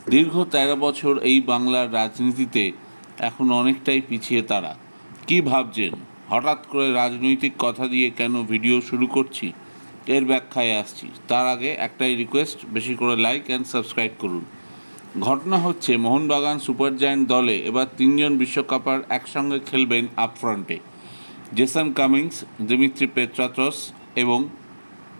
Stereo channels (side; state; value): both; inverted; correlation -1.00